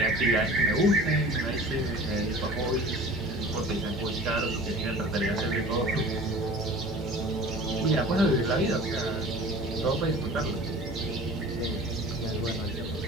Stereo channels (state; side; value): normal; both; correlation 0.43